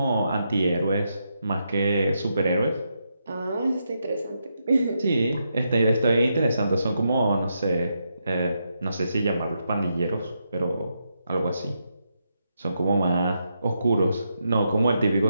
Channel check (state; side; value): inverted; both; correlation -0.82